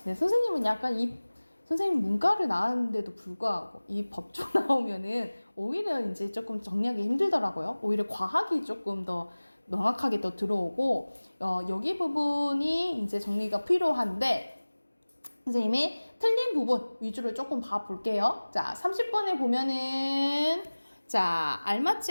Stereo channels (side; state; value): both; inverted; correlation -1.00